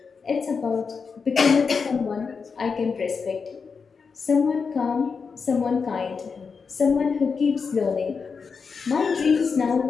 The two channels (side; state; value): right; quieter; 5.4 dB